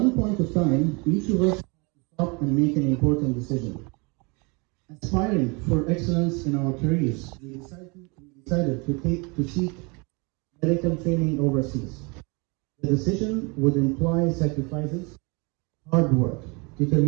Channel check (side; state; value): left; quieter; 29.6 dB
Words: point of time, each of us had to stop and make an important decision. Aspiring for excellence in our careers, we decided to seek medical training overseas. The decision would imply sacrifices, hard work,